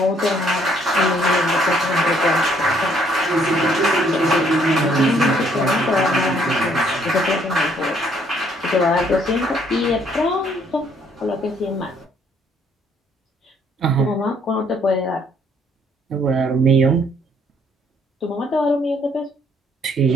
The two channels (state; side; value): normal; both; correlation 0.65